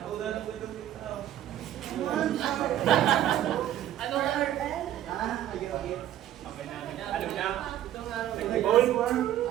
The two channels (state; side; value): quieter; left; 12.1 dB